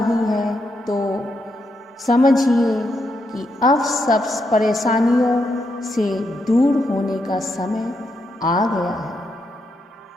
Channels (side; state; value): both; normal; correlation 0.81